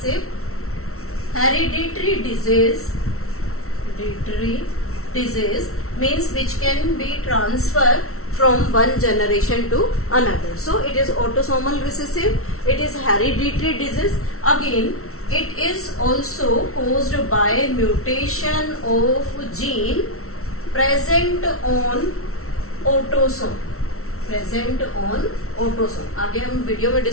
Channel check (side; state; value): right; late; 0.63 ms